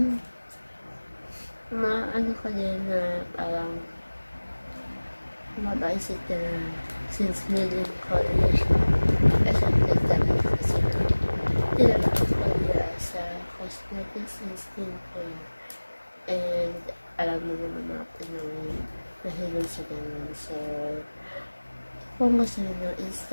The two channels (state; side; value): inverted; both; correlation -1.00